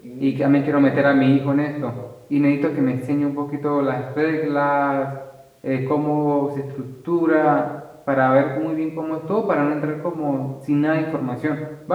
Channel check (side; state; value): both; identical; correlation 1.00